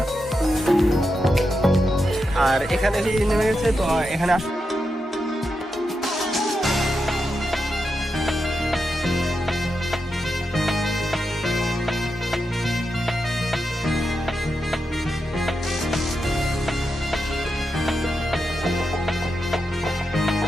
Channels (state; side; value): normal; both; correlation 0.87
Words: আর এখানে নেমে গেছে, তো এখানে